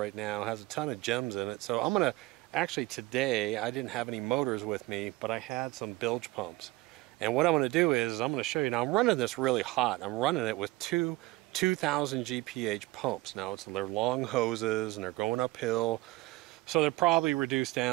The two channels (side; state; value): left; quieter; 20.8 dB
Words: now has a ton of gems in it. So I'm gonna, actually today I didn't have any motors with me, but I had some bilge pumps. And what I'm gonna do is I'm gonna show you. Now I'm running this really hot. I'm running it with two 2000 GPH pumps. Now they're long hoses and they're going uphill. So they're probably reduced